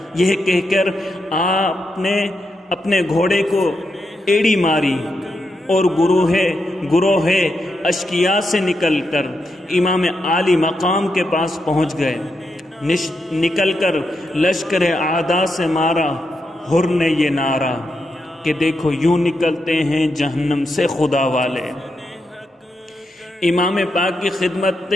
یہ کہہ کر آپ نے اپنے گھوڑے کو ایڑی ماری اور گروہ اشقیاء سے نکل کر امام عالی مقام کے پاس پہنچ گئے۔ نکل کر لشکر اعداء سے مارا حر نے یہ نعرہ کہ دیکھو یوں نکلتے ہیں جہنم سے خدا والے۔ امام پاک کی خدمت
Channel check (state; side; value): normal; both; correlation 0.84